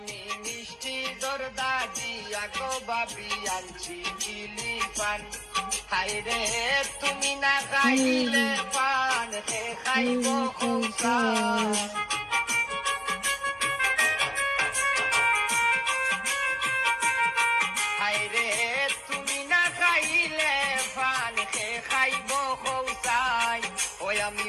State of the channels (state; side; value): identical; both; correlation 1.00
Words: মিষ্টি দরদা দিয়া গো বাবি আনছি কিলি পান হাই রে তুমি না খাইলে পান হে খাইব কৌসাই হাই রে তুমি না খাইলে পান হে খাইব কৌসাই ওই আমি